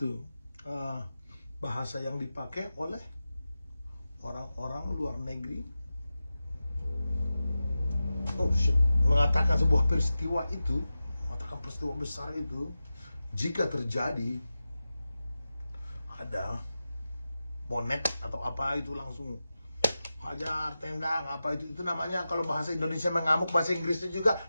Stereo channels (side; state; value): both; inverted; correlation -0.93